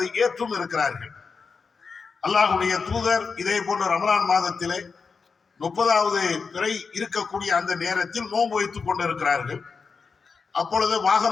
ஏற்றும் இருக்கிறார்கள். அல்லாஹ்வுடைய தூதர் இதே போன்ற ரமலான் மாதத்திலே 30வது பிறை இருக்கக்கூடிய அந்த நேரத்தில் நோன்பு வைத்துக் கொண்டிருக்கிறார்கள். அப்பொழுது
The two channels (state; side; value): quieter; right; 5.1 dB